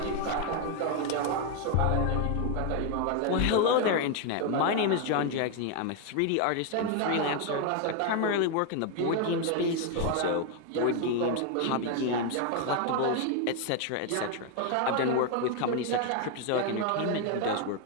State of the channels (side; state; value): both; different; correlation 0.01